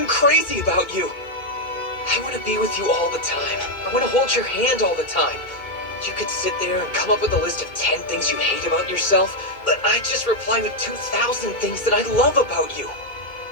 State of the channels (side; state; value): right; late; 2.2 ms